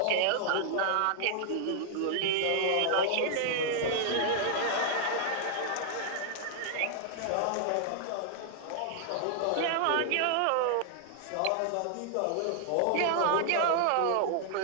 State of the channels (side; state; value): both; different; correlation -0.01